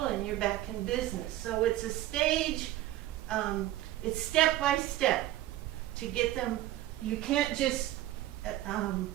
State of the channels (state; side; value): quieter; left; 14.7 dB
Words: and you're back in business. So it's a stage, it's step by step to get them. You can't just